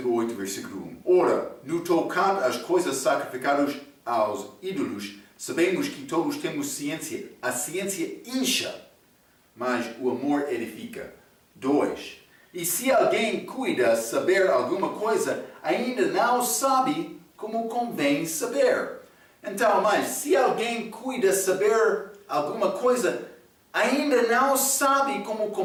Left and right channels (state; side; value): identical; both; correlation 1.00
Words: 8, versículo 1. Ora, no tocante às coisas sacrificadas aos ídolos, sabemos que todos temos ciência. A ciência incha, mas o amor edifica. 2. E se alguém cuida saber alguma coisa, ainda não sabe como convém saber. Então, mas se alguém cuida saber alguma coisa, ainda não sabe como